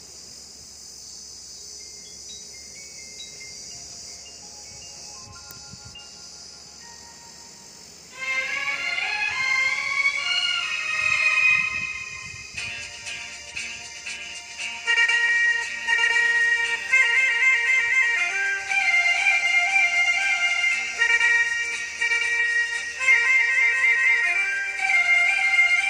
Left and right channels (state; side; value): identical; both; correlation 1.00